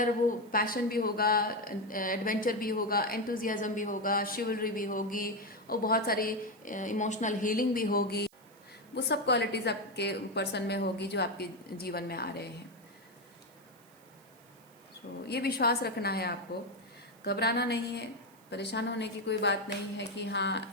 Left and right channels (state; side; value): noise; right; hiss, 28 dB below the sound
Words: वो पैशन भी होगा, एडवेंचर भी होगा, एंथुजियाज्म भी होगा, शिवलरी भी होगी, और बहुत सारी इमोशनल हीलिंग भी होगी। वो सब क्वालिटीज़ आपके पर्सन में होगी जो आपके जीवन में आ रहे हैं। तो ये विश्वास रखना है आपको, घबराना नहीं है, परेशान होने की कोई बात नहीं है कि